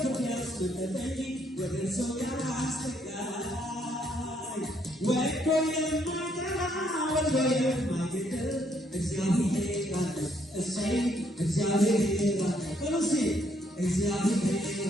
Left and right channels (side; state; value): both; normal; correlation 0.71